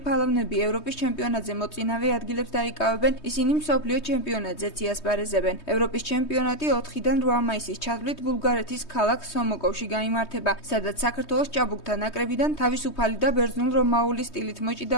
ფალავნები ევროპის ჩემპიონატზე მოწინავე ადგილებს დაიკავებენ, ისინი მსოფლიო ჩემპიონატზეც იასპარეზებენ. ევროპის ჩემპიონატი 4-დან 8 მაისის ჩათვლით ბულგარეთის ქალაქ სომოკოვში გაიმართება, სადაც საქართველოს ჭაბუკთა ნაკრებიდან თავისუფალი და ბერძნულ-რომაული სტილით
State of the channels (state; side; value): late; right; 3.2 ms